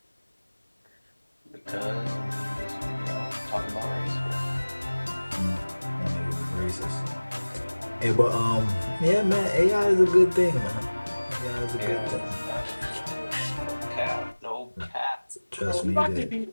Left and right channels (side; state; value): both; inverted; correlation -1.00